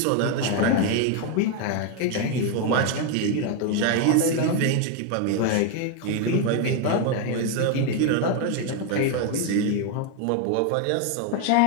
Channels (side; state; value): both; different; correlation 0.01